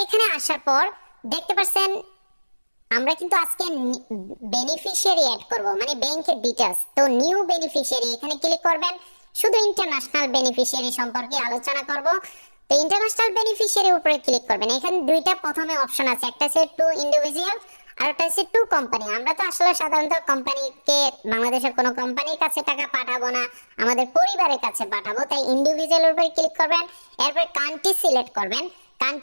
এখানে আসার পর দেখতে পাচ্ছেন আমরা কিন্তু আজকে বেনিফিশিয়ারি অ্যাড করব, মানে ব্যাংকের ডিটেইলস। তো নিউ বেনিফিশিয়ারি এখানে ক্লিক করবেন। শুধু ইন্টারন্যাশনাল বেনিফিশিয়ারি সম্পর্কে আলোচনা করব। তো ইন্টারন্যাশনাল বেনিফিশিয়ারির উপরে ক্লিক করবেন। এখানে দুইটা প্রথমে অপশন আছে, একটা হচ্ছে টু ইন্ডিভিজুয়াল আর একটা হচ্ছে টু কোম্পানি। আমরা তো আসলে সাধারণত কোম্পানিকে, বাংলাদেশের কোনো কোম্পানির কাছে টাকা পাঠাবো না, আমাদের পরিবারের কাছে পাঠাবো, তাই ইন্ডিভিজুয়ালের উপরে ক্লিক করবেন। এরপর কান্ট্রি সিলেক্ট করবেন।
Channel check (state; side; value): inverted; both; correlation -1.00